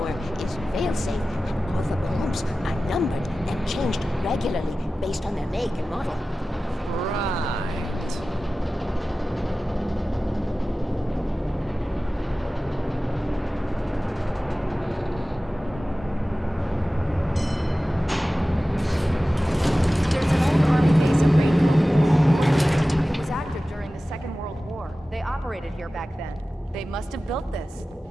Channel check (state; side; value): normal; both; correlation 0.96